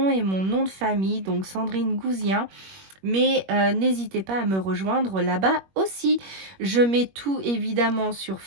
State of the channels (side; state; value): left; late; 21 ms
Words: et mon nom de famille, donc Sandrine Gouzien. Mais n'hésitez pas à me rejoindre là-bas aussi. Je mets tout évidemment sur